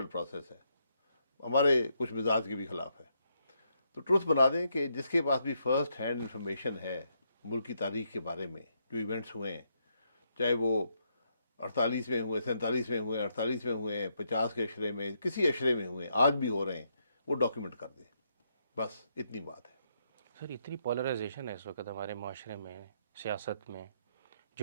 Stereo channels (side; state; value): both; inverted; correlation -0.77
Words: پروسیس ہے، ہمارے کچھ مزاج کے بھی خلاف ہے. تو ٹروتھ بنا دیں کہ جس کے پاس بھی فرسٹ ہینڈ انفارمیشن ہے ملک کی تاریخ کے بارے میں، جو ایونٹس ہوئے ہیں، چاہے وہ 48 میں ہوئے، 47 میں ہوئے، 48 میں ہوئے، 50 کے اشرے میں، کسی اشرے میں ہوئے، آج بھی ہو رہے ہیں، وہ ڈاکیومنٹ کر دیں. بس اتنی بات ہے. سر اتنی پولرائزیشن ہے اس وقت ہمارے معاشرے میں، سیاست میں،